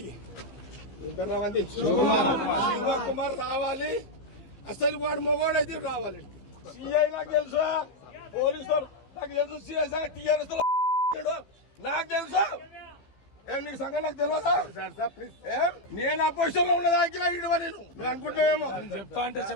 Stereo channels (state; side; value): late; right; 15 ms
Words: శివకుమార్ రావాలి. అసలు వాడు మొగోడైతే రావాలి. సిఐ నాకు తెలుసా, పోలీసు నాకు తెలుసు, సిఎస్ టీఆర్ఎస్ నాకు తెలుసా. నీకు సంగతి నాకు తెలియదా? నేను అపోజిషన్ లో ఉన్నదాకిలా ఇడవ నేను మీరు అనుకుంటున్నావేమో. చెప్తా అంటే